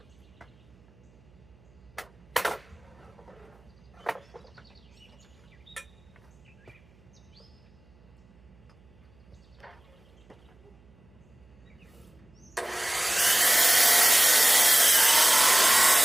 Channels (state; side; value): noise; right; hum, 29 dB below the sound